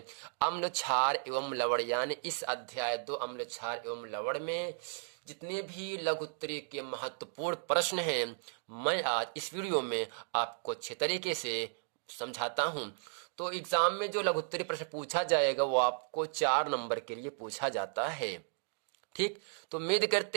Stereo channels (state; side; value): silent; left; digital silence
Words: अम्ल क्षार एवं लवण। यानी इस अध्याय 2 अम्ल क्षार एवं लवण में जितने भी लघुत्तरी के महत्वपूर्ण प्रश्न हैं, मैं आज इस वीडियो में आपको अच्छे तरीके से समझाता हूं। तो एग्जाम में जो लघुत्तरी प्रश्न पूछा जाएगा वो आपको 4 नंबर के लिए पूछा जाता है। ठीक, तो उम्मीद